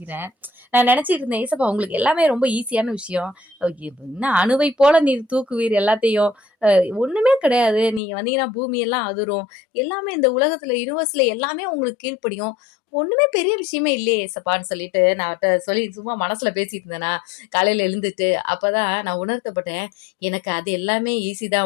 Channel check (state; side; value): drops out; right; at 8.0 s